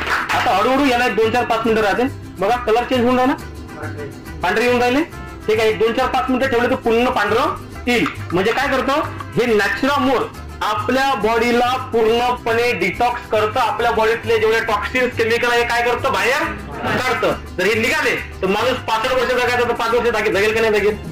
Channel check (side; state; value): both; identical; correlation 1.00